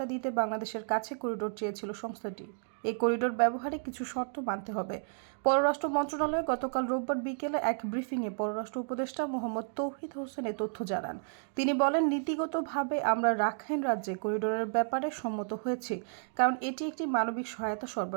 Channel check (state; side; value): silent; left; digital silence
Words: দিতে বাংলাদেশের কাছে করিডোর চেয়েছিল সংস্থাটি। এই করিডোর ব্যবহারে কিছু শর্ত মানতে হবে। পররাষ্ট্র মন্ত্রণালয় গতকাল রোববার বিকেলে এক ব্রিফিংয়ে পররাষ্ট্র উপদেষ্টা মোহাম্মদ তৌহিদ হোসেন এ তথ্য জানান। তিনি বলেন, নীতিগতভাবে আমরা রাখাইন রাজ্যে করিডোরের ব্যাপারে সম্মত হয়েছি, কারণ এটি একটি মানবিক সহায়তা